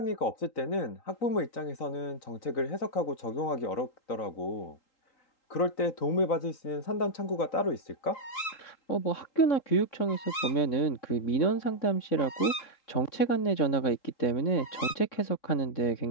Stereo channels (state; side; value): late; right; 3.8 ms